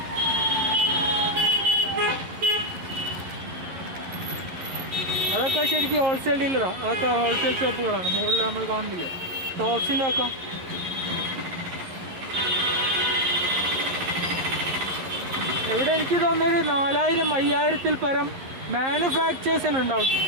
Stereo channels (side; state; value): left; late; 11 ms